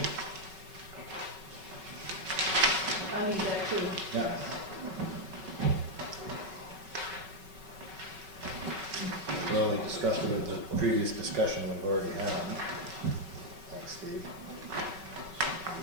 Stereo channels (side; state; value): left; late; 5.3 ms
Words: I need that too. Yeah. Well, we discussed it with the previous discussion we've already had. Thanks, Steve.